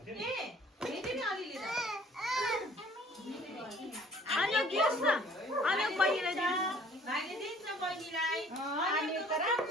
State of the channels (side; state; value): both; normal; correlation 0.54